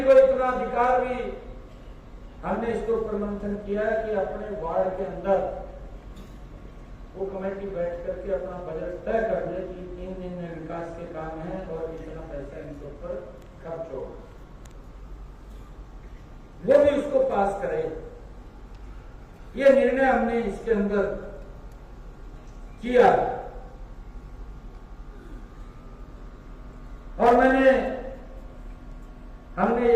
को इतना अधिकार भी हमने इसके ऊपर मंथन किया है कि अपने वार्ड के अंदर वो कमेटी बैठ करके अपना बजट तय कर दे कि 3 दिन में विकास के काम है और इतना पैसा इनके ऊपर खर्च हो, वो भी उसको पास करे। ये निर्णय हमने इसके अंदर किया। और हमने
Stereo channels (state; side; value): identical; both; correlation 1.00